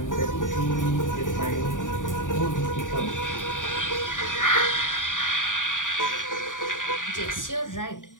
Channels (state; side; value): late; right; 0.88 ms